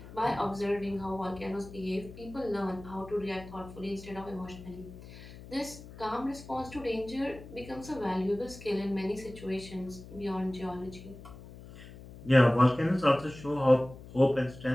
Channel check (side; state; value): left; noise; hum, 16 dB below the sound